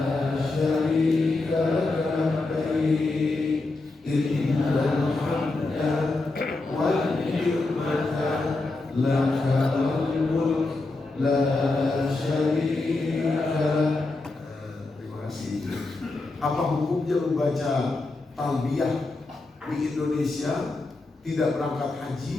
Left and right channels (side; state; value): right; quieter; 3.3 dB